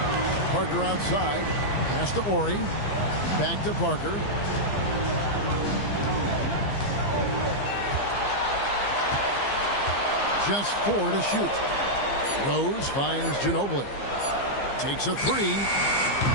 Parker outside. Pass to Ori. Back to Parker. Just 4 to shoot. Rose finds Ginobili. Takes a 3.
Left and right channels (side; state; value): right; late; 15 ms